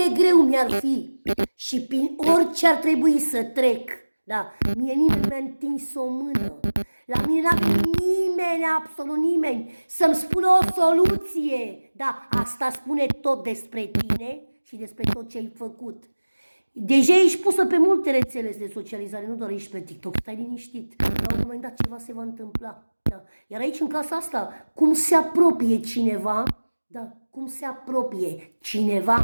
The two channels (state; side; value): inverted; both; correlation -1.00